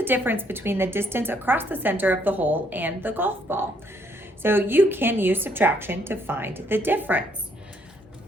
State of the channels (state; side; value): normal; both; correlation 0.69